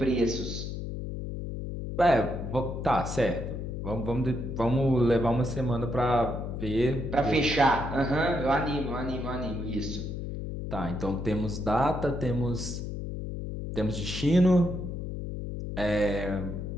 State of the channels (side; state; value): left; noise; hum, 5 dB below the sound